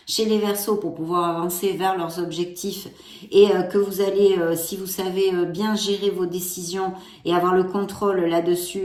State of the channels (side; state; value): both; identical; correlation 1.00